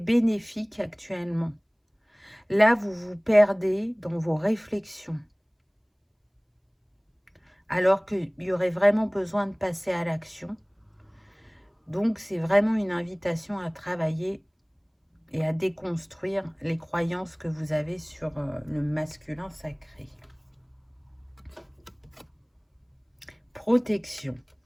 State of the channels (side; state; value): both; identical; correlation 1.00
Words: actuellement. Là, vous vous perdez dans vos réflexions, alors qu'il y aurait vraiment besoin de passer à l'action. Donc, c'est vraiment une invitation à travailler et à déconstruire les croyances que vous avez sur le masculin sacré. Protection.